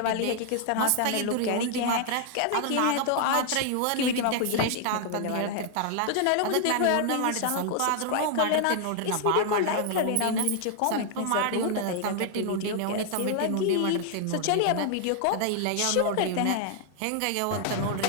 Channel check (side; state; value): both; different; correlation 0.00